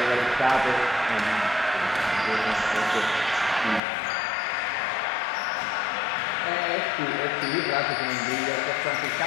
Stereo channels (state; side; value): drops out; right; at 3.8 s